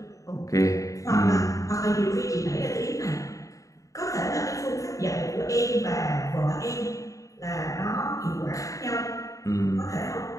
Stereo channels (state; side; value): late; right; 0.16 ms